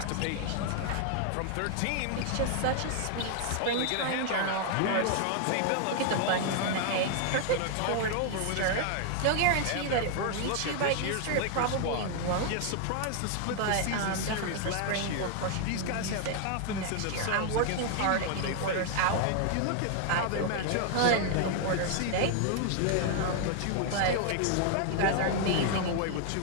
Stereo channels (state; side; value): different; both; correlation 0.00